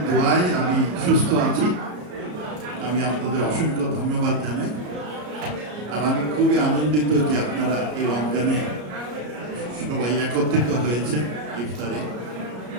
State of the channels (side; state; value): left; late; 33 ms